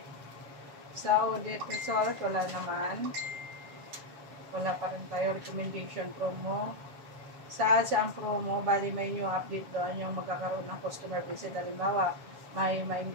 Sa audit result, wala naman. Wala pa rin tayo recommendation promo. Sa ang promo, bali may new update doon yung magkakaroon ng customer visit. Halimbawa, may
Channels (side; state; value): left; late; 7.3 ms